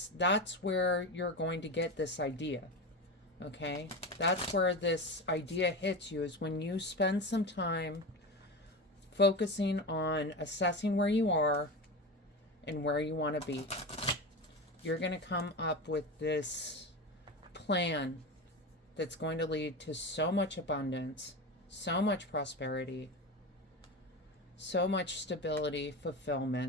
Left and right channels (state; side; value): normal; both; correlation 0.23